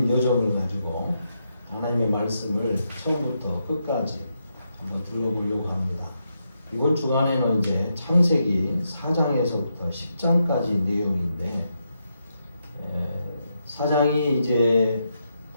여정을 가지고 하나님의 말씀을 처음부터 끝까지 한번 들어보려고 합니다. 이번 주간에는 이제 창세기 4장에서부터 10장까지 내용인데, 4장이 이제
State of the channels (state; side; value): inverted; both; correlation -0.83